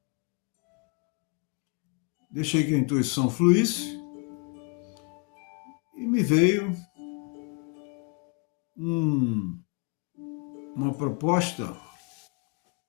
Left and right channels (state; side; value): quieter; right; 33.5 dB